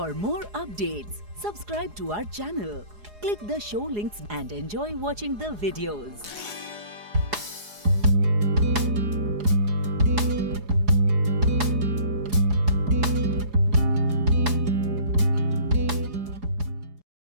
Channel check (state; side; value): late; left; 4.8 ms